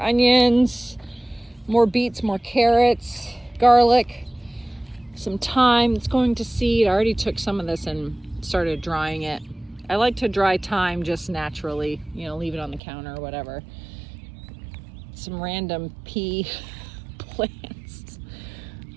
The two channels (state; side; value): drops out; left; at 12.8 s